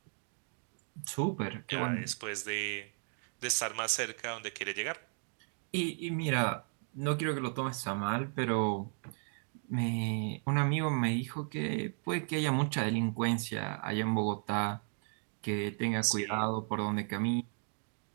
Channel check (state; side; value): silent; left; 54 dB below the other